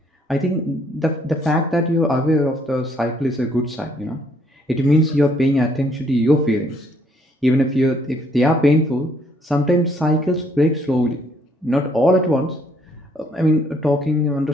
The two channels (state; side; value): normal; both; correlation 0.67